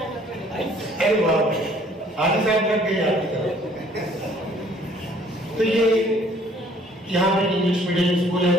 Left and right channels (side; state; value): both; normal; correlation 0.59